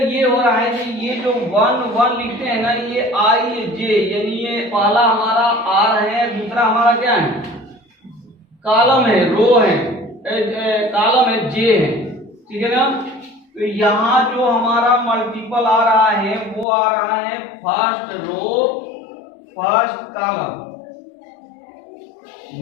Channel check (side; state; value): right; drops out; at 16.7 s